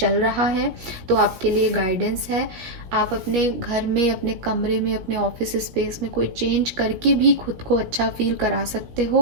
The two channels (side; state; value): left; late; 16 ms